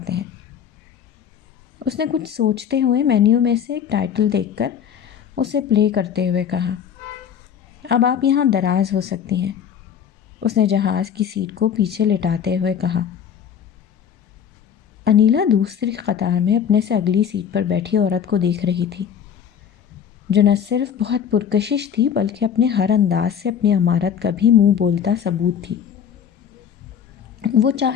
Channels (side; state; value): right; quieter; 8.3 dB